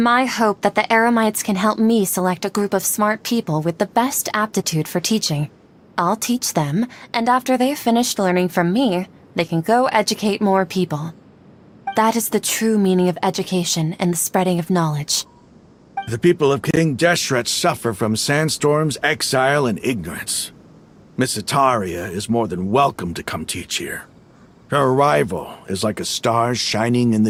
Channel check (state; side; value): identical; both; correlation 1.00